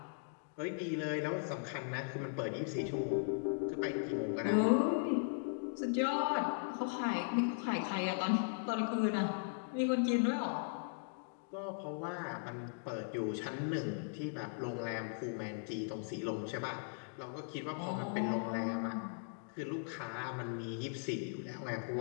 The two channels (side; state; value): right; silent; digital silence